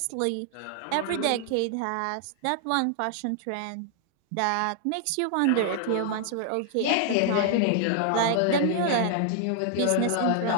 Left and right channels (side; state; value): both; different; correlation 0.00